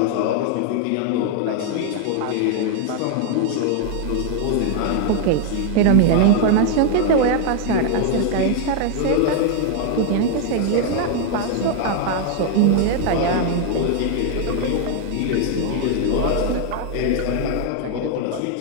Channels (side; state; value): both; different; correlation 0.00